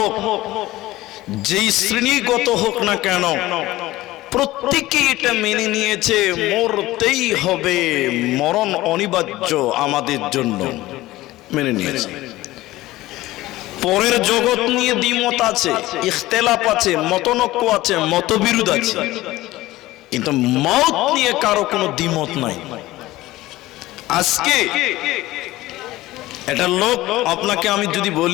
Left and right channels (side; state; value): right; quieter; 17.4 dB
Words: যেই শ্রেণীগত হোক না কেন, প্রত্যেকেই এটা মেনে নিয়েছে মরতেই হবে, মরণ অনিবার্য আমাদের জন্য, মেনে নিয়েছে। পরের জগৎ নিয়ে দ্বিমত আছে, ইখতিলাফ আছে, মতনৈক্য আছে, মতবিরোধ আছে, কিন্তু মওত নিয়ে কারো কোনো দ্বিমত নাই। আজকে এটা লোক, আপনাকে আমি যদি